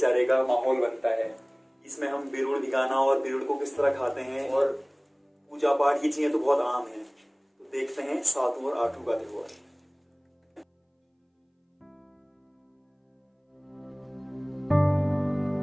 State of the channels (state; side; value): identical; both; correlation 1.00